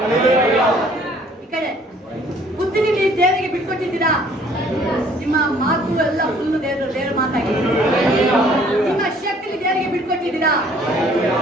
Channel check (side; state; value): both; normal; correlation 0.58